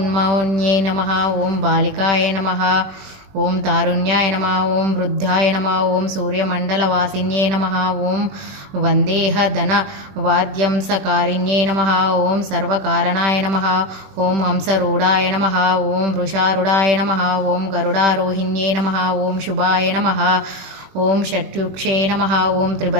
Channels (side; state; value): left; late; 21 ms